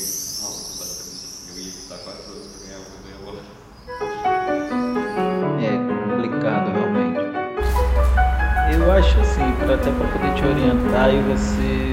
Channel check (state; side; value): identical; both; correlation 1.00